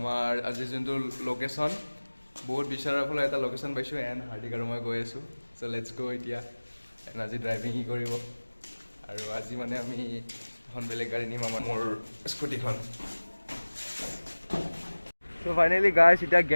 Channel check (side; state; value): both; inverted; correlation -1.00